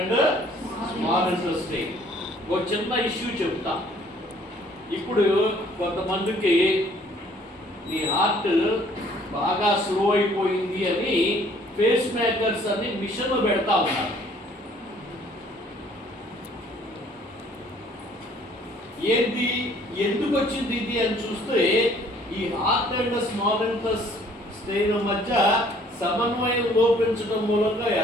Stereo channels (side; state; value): both; normal; correlation 0.58